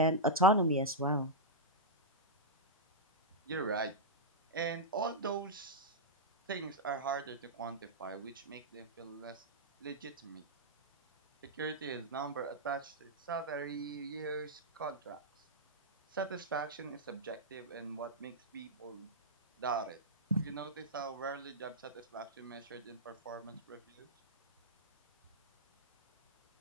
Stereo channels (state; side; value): normal; both; correlation -0.08